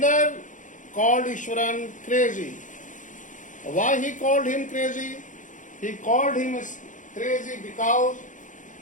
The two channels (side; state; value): right; late; 0.37 ms